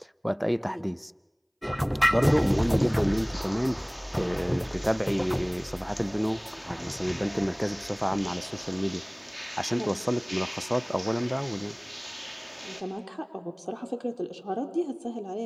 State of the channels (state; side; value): identical; both; correlation 1.00